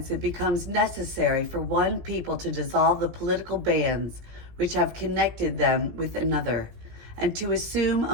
it becomes necessary for one people to dissolve the political bands which have connected them with another, and to assume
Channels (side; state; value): left; late; 17 ms